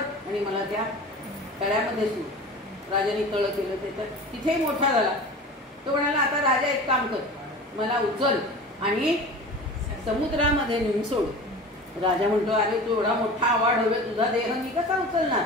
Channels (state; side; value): normal; both; correlation 0.36